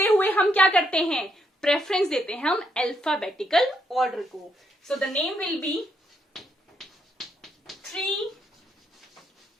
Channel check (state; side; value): normal; both; correlation 0.76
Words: हुए हम क्या करते हैं, प्रेफरेंस देते हैं हम अल्फाबेटिकल ऑर्डर को। सो the name will be 3